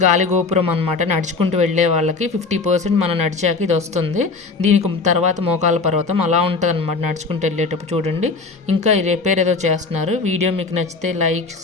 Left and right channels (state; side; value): quieter; right; 4.1 dB